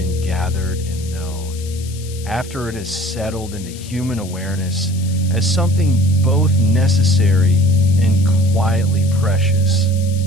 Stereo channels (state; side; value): noise; left; hiss, 17 dB below the sound